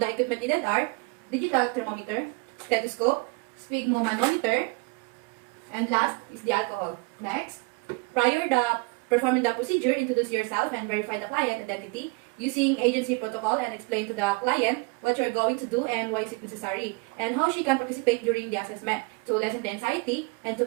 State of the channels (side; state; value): left; quieter; 29.2 dB